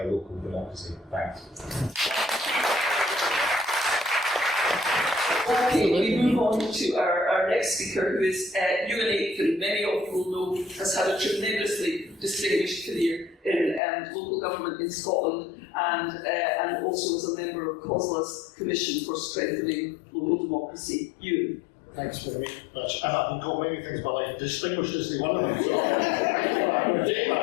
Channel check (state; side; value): drops out; right; at 13.8 s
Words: local democracy. Thanks. Okay, we move on to our next speaker, who is Ewan Aitken. Many of you will know has had a tremendously distinguished career in local government in Scotland, and also as a member of COSLA's Commission for Strengthening Local Democracy. Ewan. Thanks very much. I've been called many things in my life. Distinguished is one of them. So I'm going to take